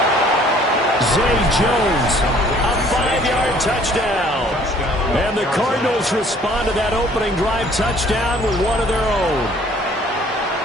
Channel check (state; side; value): normal; both; correlation 0.57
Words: Zay Jones, a 5-yard touchdown. And the Cardinals respond to that opening drive touchdown with one of their own.